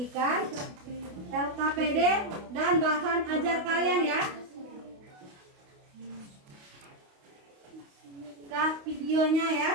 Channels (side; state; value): left; late; 28 ms